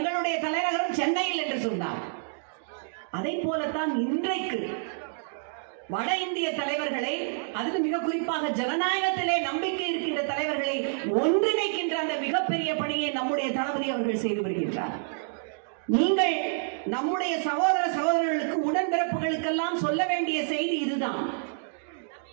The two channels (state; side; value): silent; left; digital silence